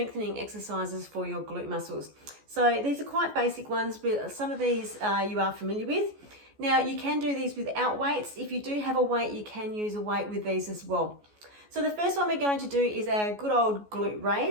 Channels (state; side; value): late; left; 14 ms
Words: exercises for your glute muscles. So these are quite basic ones, but some of these you are familiar with. Now you can do these without weights. If you do have a weight, you can use a weight with these as well. So the first one we're going to do is our good old glute